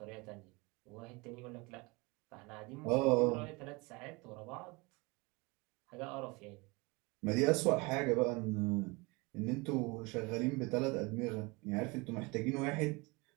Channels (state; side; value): quieter; left; 26.1 dB